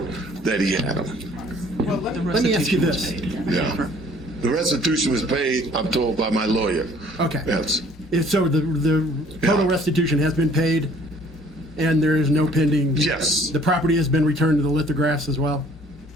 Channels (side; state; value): both; normal; correlation 0.56